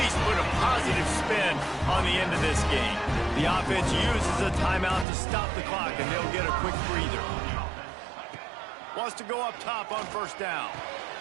put a positive spin on the end of this game. The offense uses a timeout to stop the clock, and they'll get a quick breather. Wants to go up top on first down.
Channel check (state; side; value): drops out; left; at 5.1 s